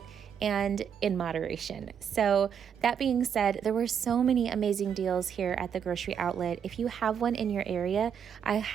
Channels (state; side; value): quieter; left; 7.9 dB